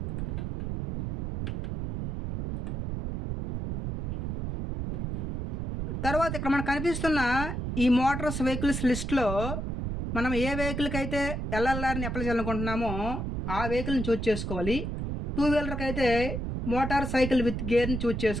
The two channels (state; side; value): noise; right; rumble, 3 dB below the sound